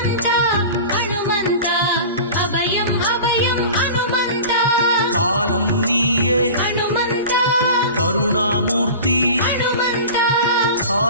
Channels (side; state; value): both; inverted; correlation -0.35